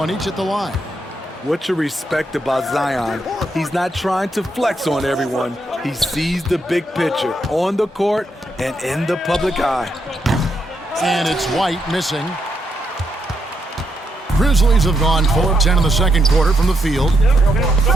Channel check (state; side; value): normal; both; correlation 0.79